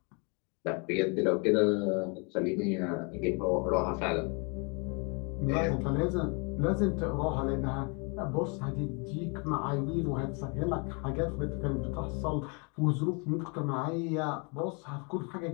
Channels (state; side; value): quieter; right; 34.0 dB